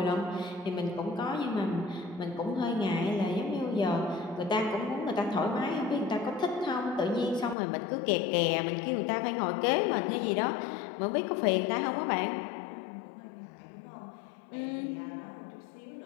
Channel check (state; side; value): drops out; right; at 7.6 s